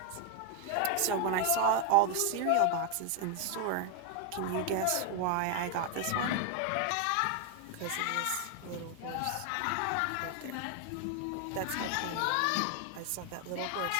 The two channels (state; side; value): different; both; correlation 0.00